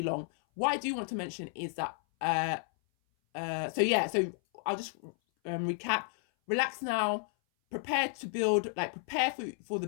long. What I do want to mention is that, so I'll just recap. Relax now, prepare to build, prepare for the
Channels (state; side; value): silent; right; 56 dB below the other